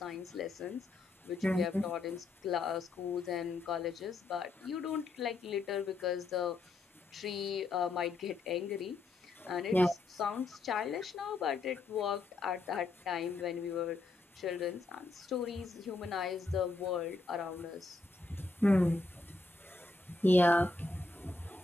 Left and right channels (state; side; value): quieter; right; 3.3 dB